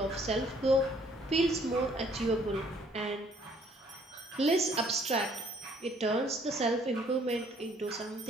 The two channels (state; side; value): normal; both; correlation 0.62